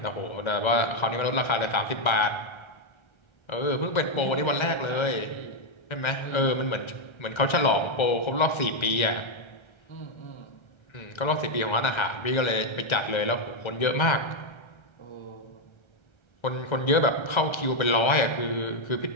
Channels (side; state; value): right; late; 1.3 ms